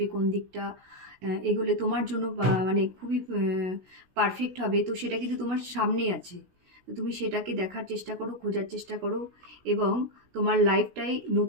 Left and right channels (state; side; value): late; left; 16 ms